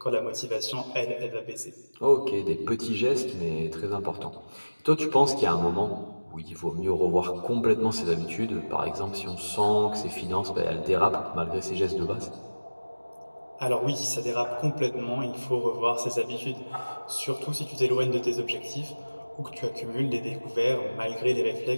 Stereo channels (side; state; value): both; inverted; correlation -1.00